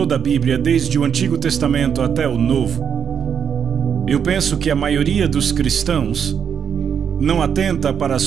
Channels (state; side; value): quieter; left; 7.4 dB